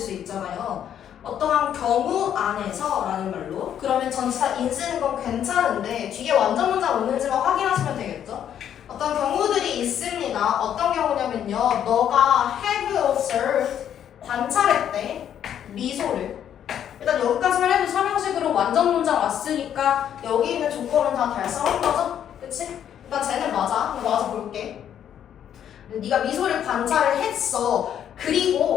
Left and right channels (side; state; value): right; quieter; 9.7 dB